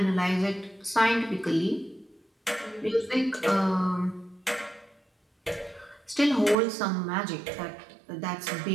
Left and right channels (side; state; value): left; drops out; at 6.6 s